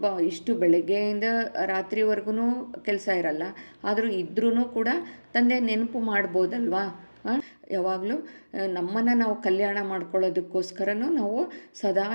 ಇಷ್ಟು ಬೆಳಗ್ಗೆಯಿಂದ ರಾತ್ರಿವರೆಗೂ ಕೆಲಸ ಇರಲ್ಲ. ಆದರೂ ಇದ್ರೂ ಕೂಡ ತಂದೆ ನೆನಪು ಮಾಡ್ಬೋದಲ್ವಾ? ಯಾವಾಗಲೂ ನಮ್ಮನ್ನು ನಾವು ಕಲ್ಯಾಣ ಮಾಡ್ಕೊಳ್ಳೋದಕ್ಕೋಸ್ಕರನೂ ನಾವು ಸದಾ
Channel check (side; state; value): both; inverted; correlation -1.00